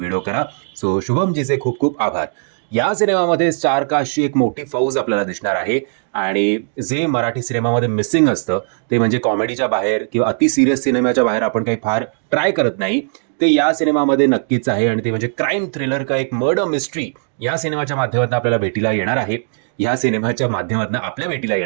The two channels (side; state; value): left; silent; digital silence